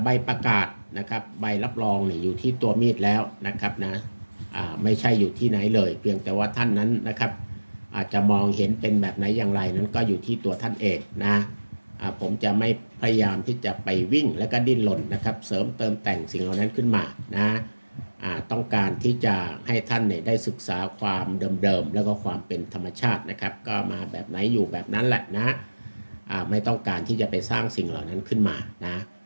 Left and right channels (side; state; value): both; inverted; correlation -1.00